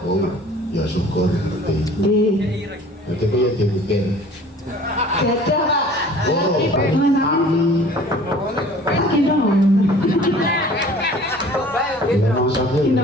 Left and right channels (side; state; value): both; normal; correlation 0.48